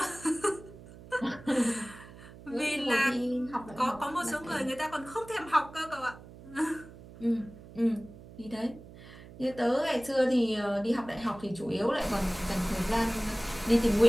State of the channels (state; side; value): noise; right; hum, 18 dB below the sound